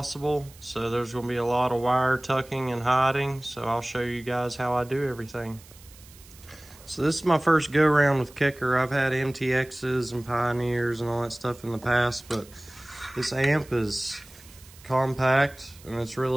So there's gonna be a lot of wire tucking and hiding. So I'll show you guys how I do everything. So this is my first go around with Kicker. I've had MTXs and Pioneers and all that stuff in the past, but this amp is compact and it's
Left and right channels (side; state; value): right; noise; hiss, 22 dB below the sound